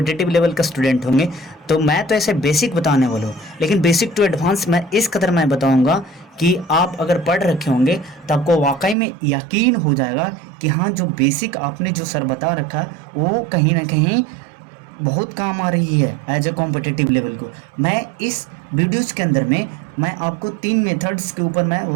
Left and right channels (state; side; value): drops out; left; at 9.0 s